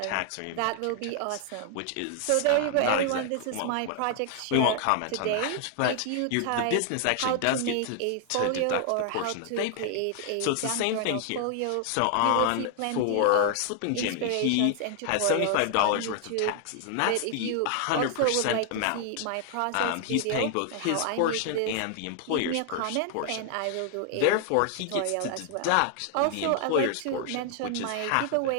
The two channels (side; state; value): both; different; correlation 0.00